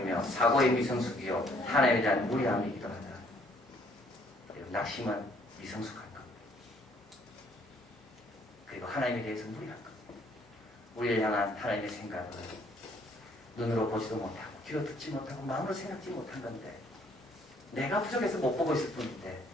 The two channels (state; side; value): normal; both; correlation 0.64